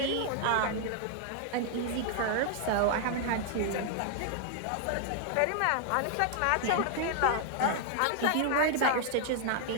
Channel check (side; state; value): both; different; correlation 0.00